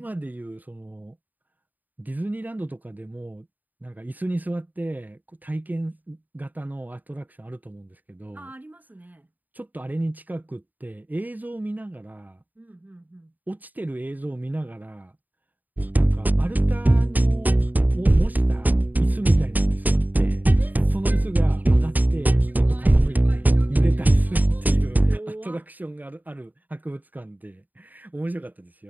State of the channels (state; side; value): late; left; 0.084 ms